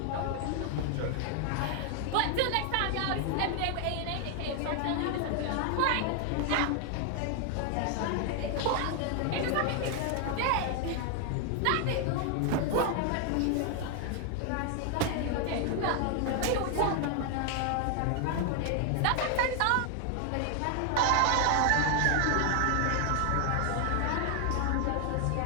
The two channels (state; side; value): different; both; correlation 0.00